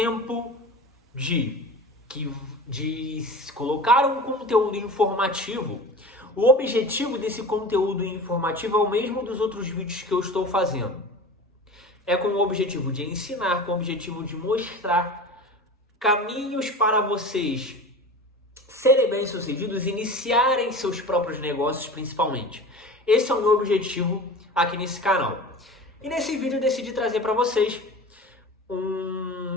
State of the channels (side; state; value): both; normal; correlation 0.35